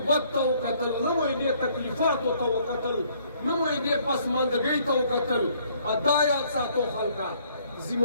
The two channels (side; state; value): both; inverted; correlation -0.63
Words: ته وکتل نه مو یې دې تکلیفاتو ته وکتل نه مو یې دې پسماندګۍ ته وکتل دا یاد ساتو خلکه